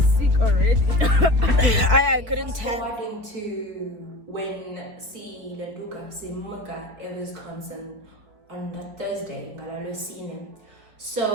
sick already. I couldn't tell. According to when si Landuka si Muka in Wisconsin on the Thursday, Ngalalosine.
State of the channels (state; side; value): late; left; 4.4 ms